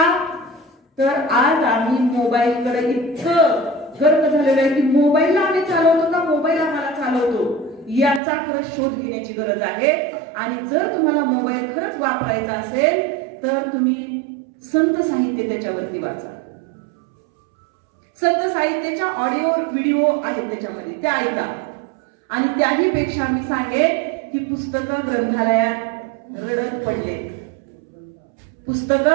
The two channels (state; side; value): drops out; left; at 8.2 s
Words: तर आज आम्ही मोबाईलकडे इतकं गर्क झालेलं आहे की मोबाईलला आम्ही चालवतो का मोबाईल आम्हाला चालवतो याचा खरंच शोध घेण्याची गरज आहे. आणि जर तुम्हाला मोबाईल खरंच वापरायचा असेल तर तुम्ही संत साहित्य त्याच्यावरती वाचा. संत साहित्याच्या ऑडिओ व्हिडिओ आहेत त्याच्यामध्ये, त्या ऐका. आणि त्याही पेक्षा मी सांगेन की पुस्तकं ग्रंथालयात रडत पडले,